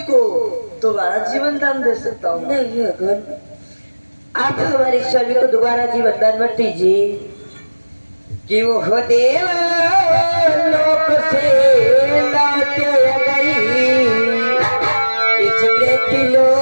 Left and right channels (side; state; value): both; inverted; correlation -1.00